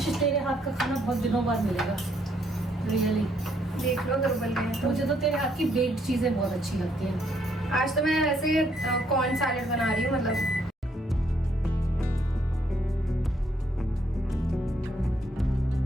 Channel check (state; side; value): normal; both; correlation 0.71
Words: तेरे हाथ का खाना बहुत दिनों बाद मिलेगा, रियली। देख लो दुर्बल गए। मुझे तो तेरे हाथ की बेक्ड चीजें बहुत अच्छी लगती हैं। आज तो मैं वैसे कॉर्न सैलेड बना रही हूँ, मतलब